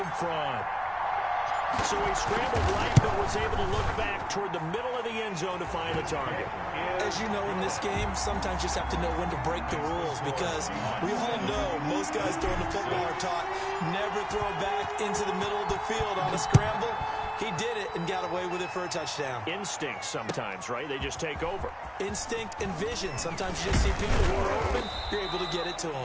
front. So he scrambled right, but was able to look back toward the middle of the end zone to find the target. As you know, in this game, sometimes you just have to know when to break the rules because we all know most guys throwing the football are taught never throw back into the middle of the field on a scramble. He did it and got away with it for a touchdown. Instinct sometimes, right? They just take over. Instinct and vision. Sometimes you just see people who are open, you're able to get it to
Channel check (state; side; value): identical; both; correlation 1.00